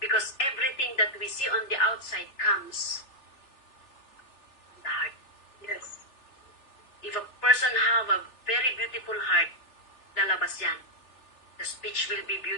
Because everything that we see on the outside comes from the heart. Yes. If a person have a very beautiful heart, lalabas yan. The speech will be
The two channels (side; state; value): right; late; 3.4 ms